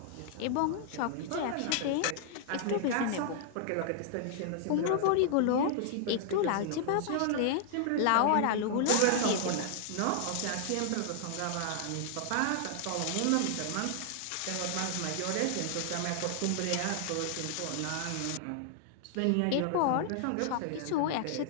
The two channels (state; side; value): different; both; correlation -0.01